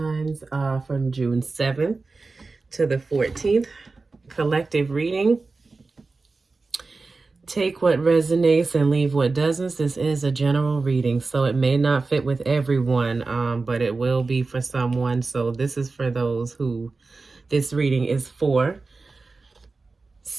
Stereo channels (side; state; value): left; quieter; 3.8 dB